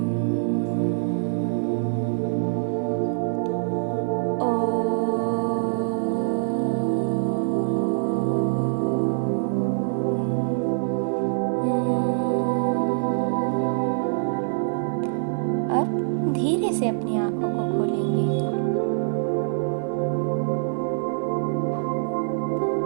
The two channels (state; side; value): silent; left; digital silence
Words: अब धीरे से अपनी आंखों को खोलेंगे।